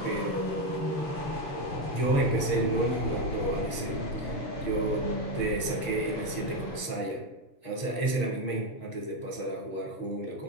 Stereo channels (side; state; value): right; late; 6.4 ms